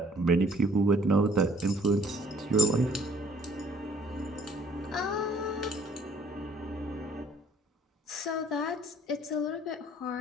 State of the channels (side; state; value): both; normal; correlation 0.60